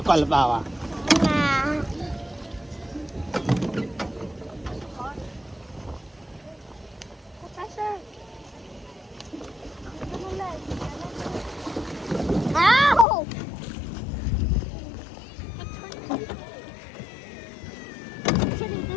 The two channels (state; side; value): drops out; right; at 13.1 s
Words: con là bao à? Nah. Professor. Ow! Turning